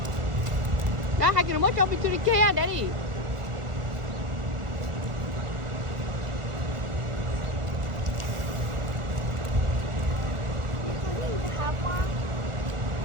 Nah, hakin mo jump into the kaya, Daddy.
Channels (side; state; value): left; late; 1.4 ms